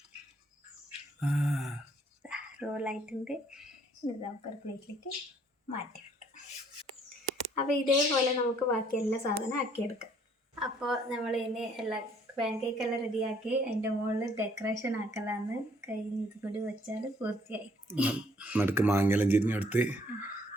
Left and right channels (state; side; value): normal; both; correlation 0.63